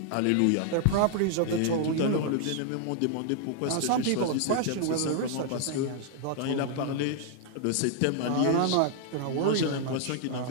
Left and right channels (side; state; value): both; different; correlation 0.00